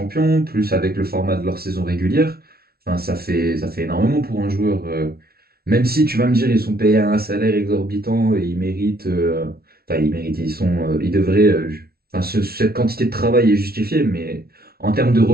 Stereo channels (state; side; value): late; left; 0.44 ms